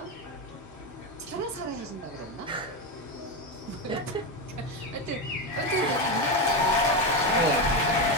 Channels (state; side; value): normal; both; correlation 0.13